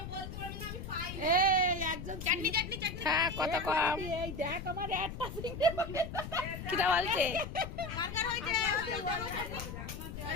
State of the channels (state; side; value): noise; left; rumble, 8 dB below the sound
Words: বলতে পারবে না আমি পাই এই একজন চাটনি চাটনি চাটনি হ্যাঁ কত কম এই দেখ আমার একটা চিংড়ি কিটা বলছে কার হইছে